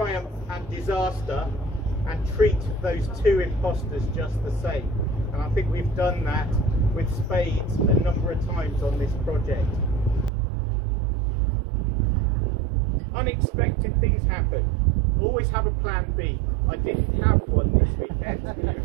and disaster and treat those two imposters just the same. And I think we've done that with spades a number of times on this project. Unexpected things happen. Always have a plan B. I didn't have one this weekend.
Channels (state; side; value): drops out; left; at 10.3 s